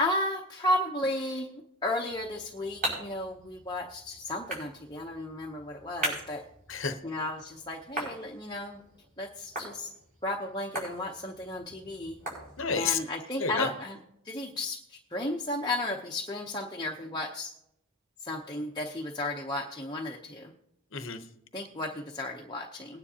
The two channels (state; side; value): normal; both; correlation 0.24